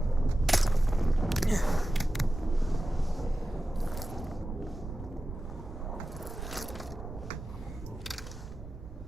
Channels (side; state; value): both; normal; correlation 0.94